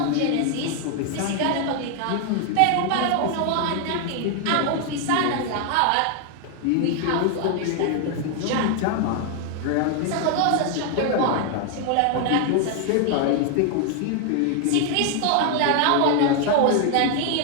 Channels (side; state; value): both; different; correlation 0.00